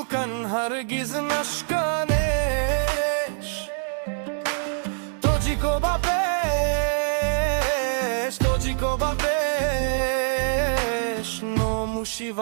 هرگز نشکنش. توجیکو با پیش، توجیکو با پیش. نوموشی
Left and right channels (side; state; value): left; silent; digital silence